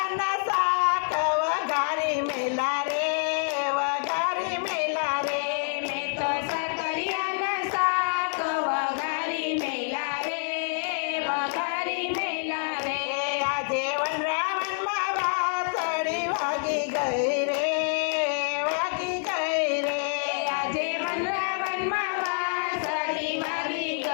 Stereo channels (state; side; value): silent; right; digital silence